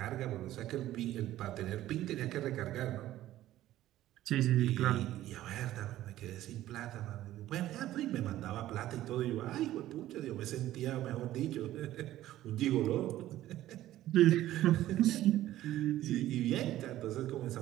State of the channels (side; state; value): left; quieter; 14.2 dB